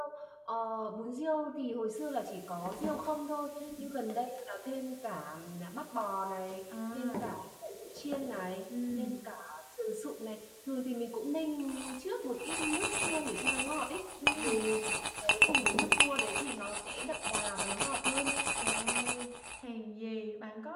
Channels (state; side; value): identical; both; correlation 1.00